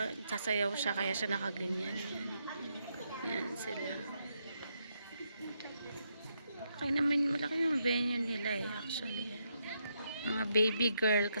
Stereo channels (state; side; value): inverted; both; correlation -0.79